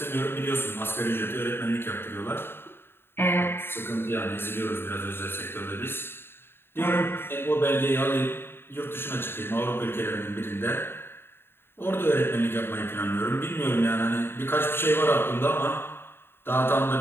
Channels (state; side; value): late; right; 0.11 ms